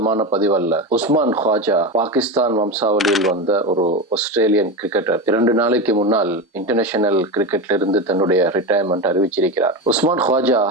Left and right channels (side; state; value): both; normal; correlation 0.19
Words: பதிவல்ல. உஸ்மான் ख्वाजा பாகிஸ்தான் வம்சாவளியில் வந்த ஒரு ஆஸ்திரேலியன் கிரிக்கெட்டர் 2 நாளைக்கு முன்னால் இன்டர்நேஷனல் கிரிக்கெட்ல இருந்து தன்னுடைய ரிட்டையர்மெண்ட் அறிவிச்சிருக்கிறார். உஸ்மான் ख्वाजा